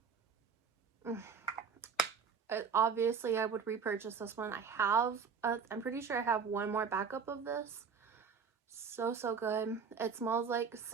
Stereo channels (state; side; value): quieter; left; 6.2 dB